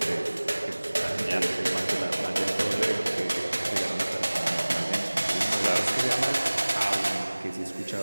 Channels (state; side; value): inverted; both; correlation -1.00